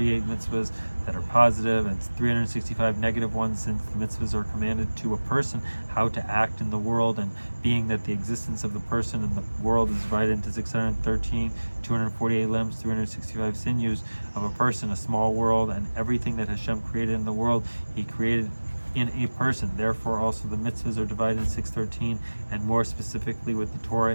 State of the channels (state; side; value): inverted; both; correlation -1.00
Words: mitzvahs that are positive, and 365 negative ones, since the mitzvahs are commanded to a person how to act in the world, and being that the existence of the person in the world is divided into 613, 248 limbs, 365 sinews of a person, a small world, and everything that Hashem created in the world, he created in a person. Therefore also the mitzvahs are divided in 613, and more specifically with the